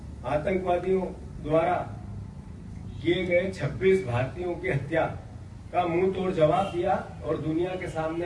आतंकवादियों द्वारा किए गए 26 भारतीयों की हत्या का मुंह तोड़ जवाब दिया और दुनिया के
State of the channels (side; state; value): both; identical; correlation 1.00